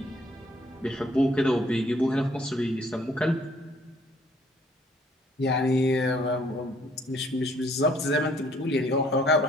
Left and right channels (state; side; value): normal; both; correlation 0.62